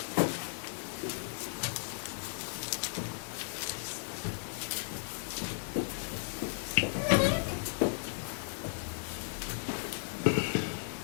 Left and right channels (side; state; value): right; silent; digital silence